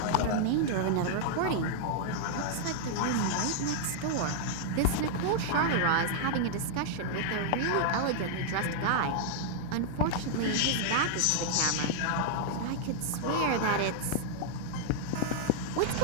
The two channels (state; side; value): different; both; correlation -0.01